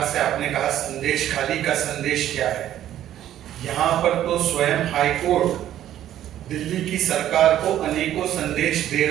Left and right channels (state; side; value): quieter; left; 11.9 dB